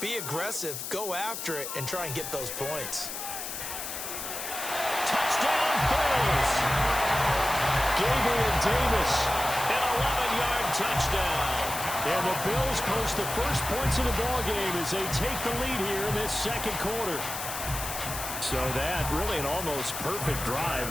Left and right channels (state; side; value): noise; left; hiss, 6 dB below the sound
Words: aggressive, go after it, and try and get those points. Touchdown, Bills! Gabriel Davis. An 11-yard touchdown. And the Bills post the first points of the ballgame as they take the lead here in this 2nd quarter. So that really an almost perfect drive